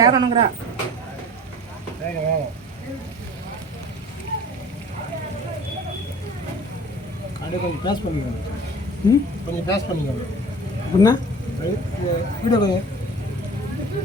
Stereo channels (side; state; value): both; normal; correlation 0.44